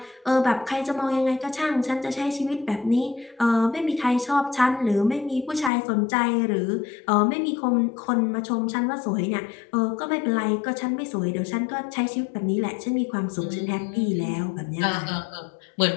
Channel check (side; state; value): right; drops out; at 5.7 s